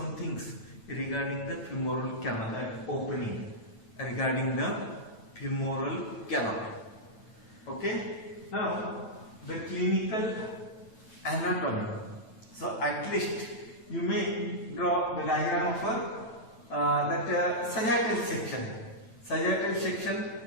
things regarding the femoral canal opening, regarding the femoral canal. Okay, now the clinical anatomy. So at least you may draw the diagram of that sagittal section,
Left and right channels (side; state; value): right; late; 9.1 ms